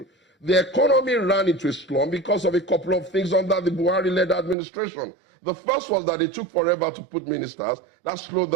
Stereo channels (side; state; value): left; drops out; at 4.5 s